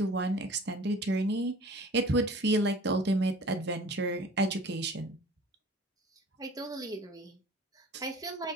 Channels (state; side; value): normal; both; correlation 0.46